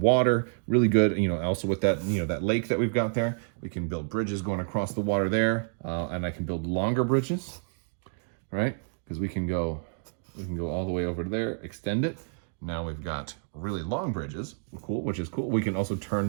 Really good. Also with that, that lake that we've got there, we can build bridges going across the water there, and I can build longer bridges, right? Because we can go all the way over there, extend it. Now we've got really long bridges, which is cool. We can also turn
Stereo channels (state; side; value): silent; left; 59 dB below the other